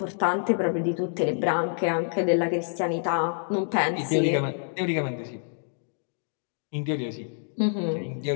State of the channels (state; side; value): silent; right; 60 dB below the other